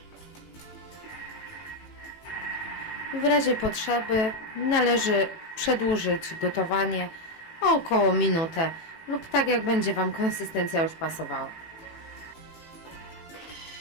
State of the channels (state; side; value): late; right; 18 ms